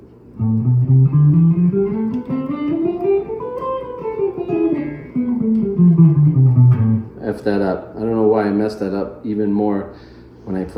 F that up. I don't know why I messed that up even more when I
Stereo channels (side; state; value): both; identical; correlation 1.00